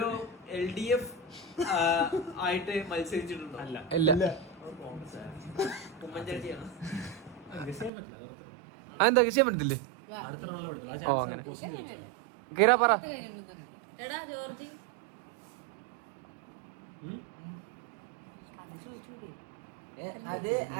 LDF ആയിട്ട് മത്സരിച്ചിട്ടുണ്ടോ? അല്ല. ഇല്ല. ഉമ്മൻചാണ്ടിയാണ്. ഗസ് ചെയ്യാൻ പറ്റില്ല, അത് അത്ര. അതെന്താ ചെയ്യാൻ പറ്റത്തില്ലേ? അടുത്ത റൗണ്ടിൽ പറ്റില്ല. ആ ചാൻസ് ക്വസ്റ്റ്യൻ ചോദിച്ചത്. ഗീര പറ. എടാ ജോർജി അത്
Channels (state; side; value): drops out; left; at 7.9 s